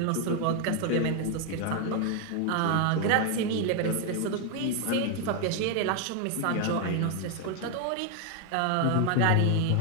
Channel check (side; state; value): both; different; correlation 0.01